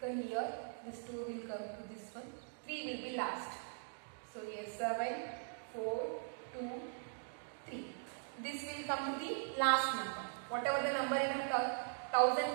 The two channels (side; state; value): left; silent; digital silence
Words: come here, this 2 will come to this one, 3 will be last. So here 7, 4, 2, 3. This will come to the last number. Whatever the number in a thousand